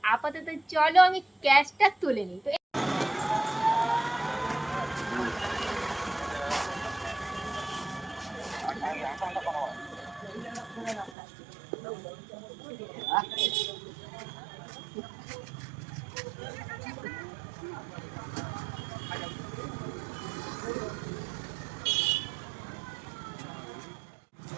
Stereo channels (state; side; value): drops out; left; at 11.2 s